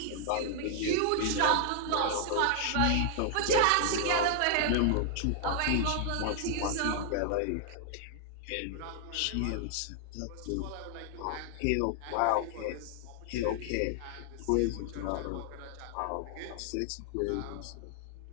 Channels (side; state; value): both; different; correlation 0.00